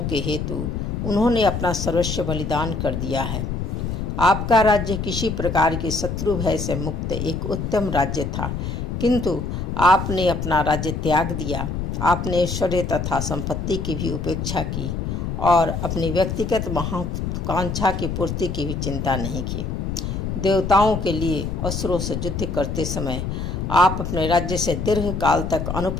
के हेतु उन्होंने अपना सर्वस्व बलिदान कर दिया है। आपका राज्य किसी प्रकार के शत्रु भय से मुक्त एक उत्तम राज्य था, किंतु आपने अपना राज्य त्याग दिया। आपने ऐश्वर्य तथा संपत्ति की भी उपेक्षा की और अपनी व्यक्तिगत महत्वाकांक्षा की पूर्ति की भी चिंता नहीं की। देवताओं के लिए असुरों से युद्ध करते समय आप अपने राज्य से दीर्घ काल तक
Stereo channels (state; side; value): noise; left; rumble, 3 dB below the sound